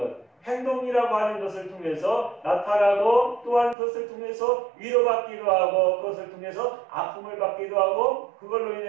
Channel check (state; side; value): drops out; left; at 3.8 s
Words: 행동이라고 하는 것을 통해서 나타나고, 또한 그것을 통해서 위로받기도 하고, 그것을 통해서 아픔을 받기도 하고, 그걸로